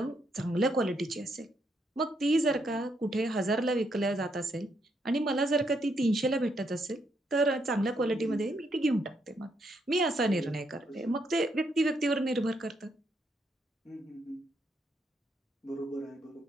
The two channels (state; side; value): normal; both; correlation 0.76